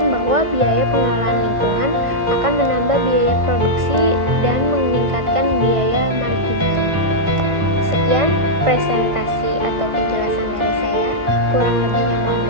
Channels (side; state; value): left; late; 1.5 ms